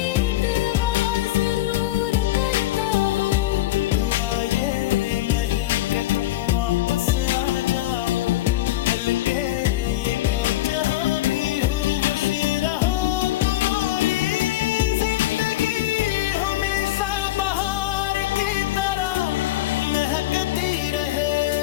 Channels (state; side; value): quieter; right; 15.5 dB